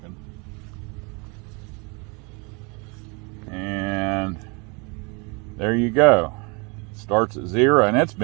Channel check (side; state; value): left; quieter; 30.8 dB